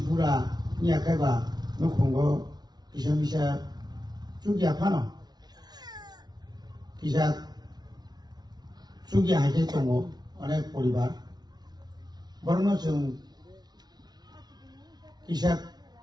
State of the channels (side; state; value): left; late; 0.19 ms